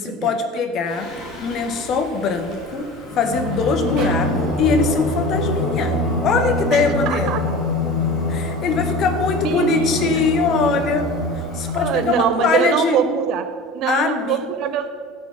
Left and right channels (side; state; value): both; normal; correlation 0.36